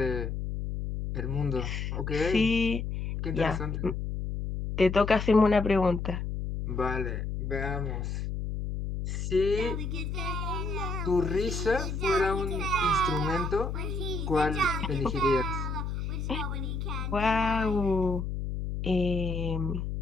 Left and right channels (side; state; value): left; noise; hum, 3 dB below the sound